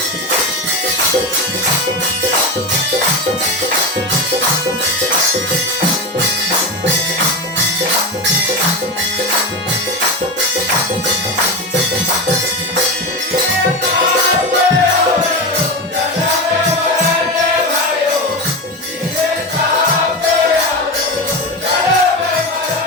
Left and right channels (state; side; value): normal; both; correlation 0.19